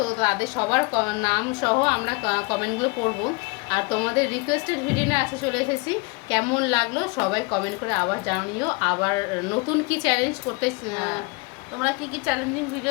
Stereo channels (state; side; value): quieter; right; 28.2 dB